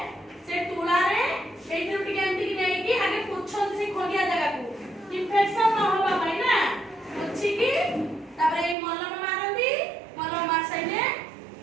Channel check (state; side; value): drops out; left; at 8.8 s